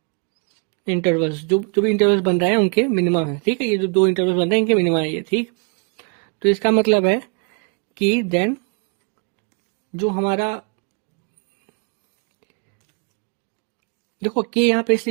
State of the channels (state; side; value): quieter; left; 38.9 dB